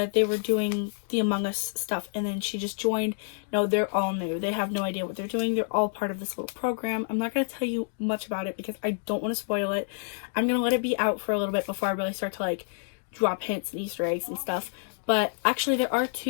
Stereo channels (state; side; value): silent; right; 59 dB below the other